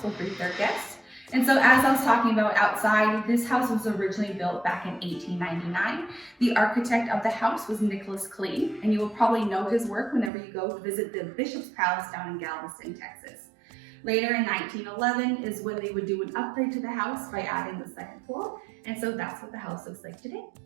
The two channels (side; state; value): left; drops out; at 10.3 s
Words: will greet their guests. And so as I was talking about outside, this house was originally built back in 1899. The architect of the house was Nicholas Clayton, and you will probably know his work whenever you go to visit the Bishop's Palace down in Galveston, Texas. Later in 1911 is when they would do an upgrade to the house by adding the second floor, and so that's what the house looks like today.